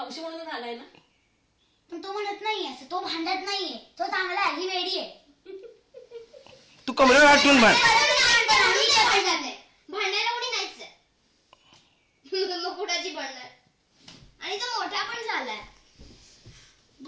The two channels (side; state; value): both; identical; correlation 1.00